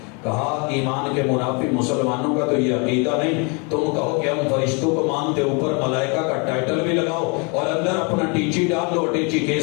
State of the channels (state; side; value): quieter; right; 33.3 dB